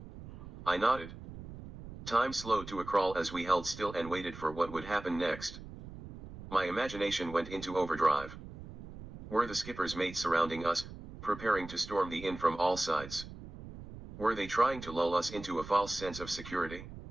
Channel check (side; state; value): right; noise; rumble, 14 dB below the sound